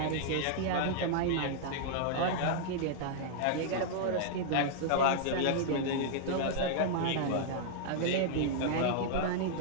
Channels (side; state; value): both; different; correlation -0.01